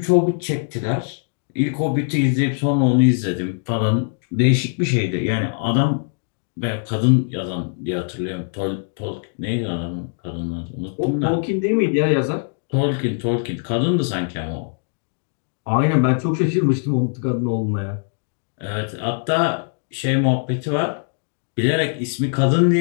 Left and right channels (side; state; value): right; silent; digital silence